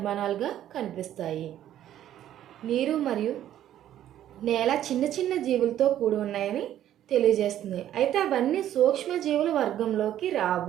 కనిపిస్తాయి. నీరు మరియు నేల చిన్న చిన్న జీవులతో కూడి ఉన్నాయని తెలియజేస్తుంది. అయితే అవన్నీ సూక్ష్మజీవుల వర్గంలోకి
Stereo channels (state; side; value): quieter; left; 11.7 dB